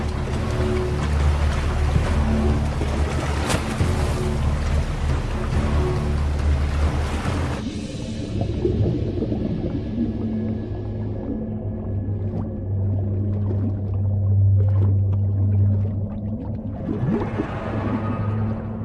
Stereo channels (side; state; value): both; identical; correlation 1.00